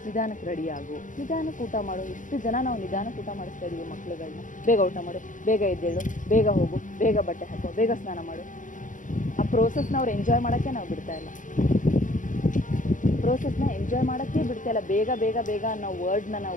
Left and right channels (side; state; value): right; late; 0.38 ms